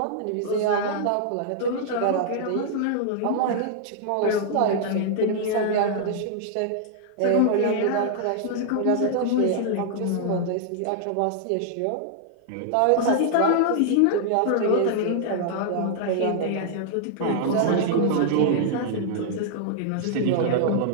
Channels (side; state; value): both; different; correlation -0.01